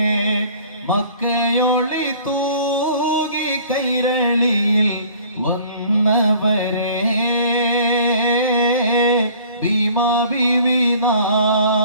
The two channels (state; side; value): inverted; both; correlation -0.52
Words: മക്കയൊളി തൂകി കൈരളിയിൽ വന്നവരെ, ഭീമാ ബീവി